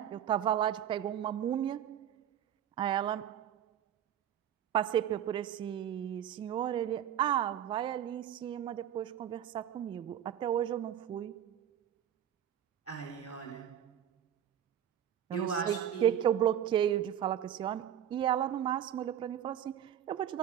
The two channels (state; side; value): quieter; left; 10.2 dB